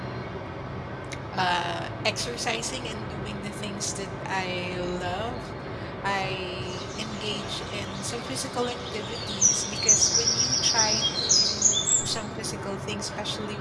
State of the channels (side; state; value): both; identical; correlation 1.00